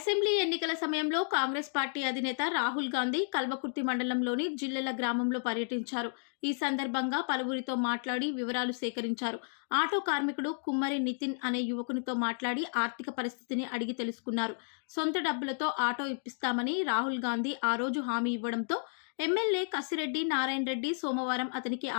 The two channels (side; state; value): right; silent; digital silence